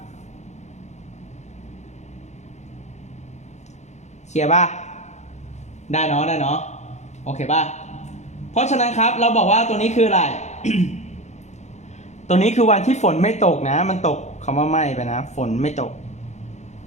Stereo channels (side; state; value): right; late; 0.33 ms